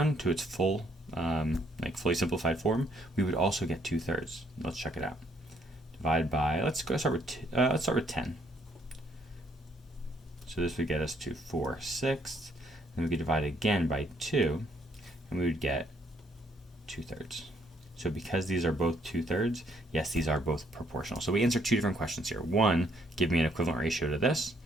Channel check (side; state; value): both; normal; correlation 0.67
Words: to its full, fully simplified form, we would also get 2/3. Let's check it out. Divide by, let's start with 10. So this would get us to 4/6. Then we could divide again by 2, and we would get 2/3. So because these are both 2/3, yes, these are both proportional. So we answer 2 different questions here. One, give me an equivalent ratio to this,